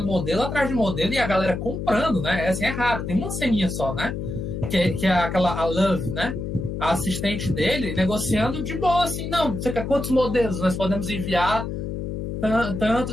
modelo atrás de modelo e a galera comprando, né? Assim, é raro, tem uma ceninha só, né? Que é a Love, né? A assistente dele negociando de boa, assim, não, você quer quantos modelos nós podemos enviar?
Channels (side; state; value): left; noise; hum, 5 dB below the sound